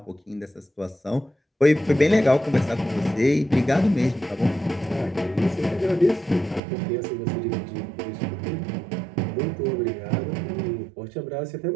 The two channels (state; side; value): drops out; left; at 6.6 s